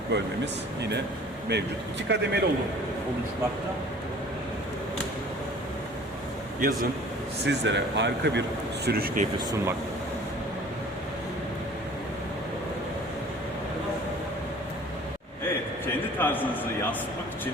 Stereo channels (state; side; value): normal; both; correlation 0.48